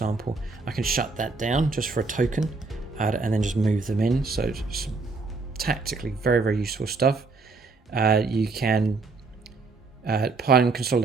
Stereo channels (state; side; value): quieter; left; 4.0 dB